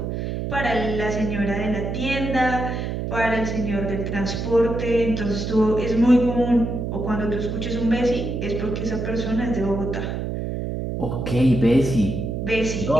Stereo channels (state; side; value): noise; right; hum, 3 dB below the sound